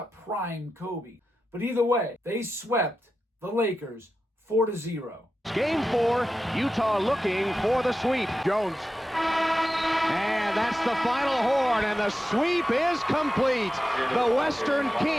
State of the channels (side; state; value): both; normal; correlation 0.91